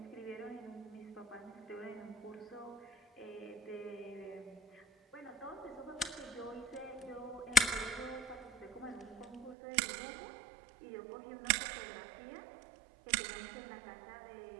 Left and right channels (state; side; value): drops out; left; at 9.6 s